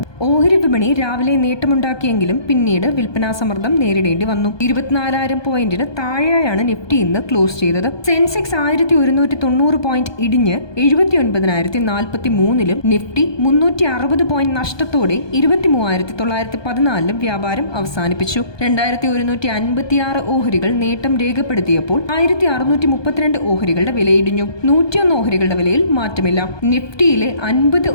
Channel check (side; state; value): right; late; 1.2 ms